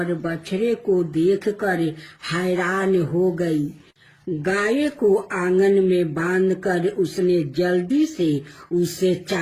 बछड़े को देखकर हैरान हो गई। गाय को आंगन में बांधकर उसने जल्दी से उसे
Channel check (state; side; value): identical; both; correlation 1.00